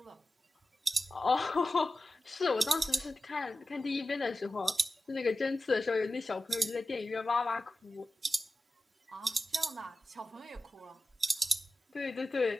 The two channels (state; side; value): normal; both; correlation 0.93